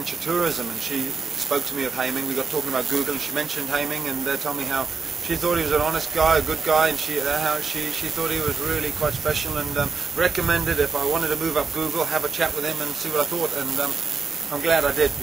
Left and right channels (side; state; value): left; quieter; 4.8 dB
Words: tourism, and she spoke to me of Haiming. We got talking about Google, and she mentioned Haiming, and told me how she thought he was an honest guy, a good guy, and how she thought he was really quite special, and recommended if I wanted to move up Google, have a chat with him and see what I thought, and I'm glad I did,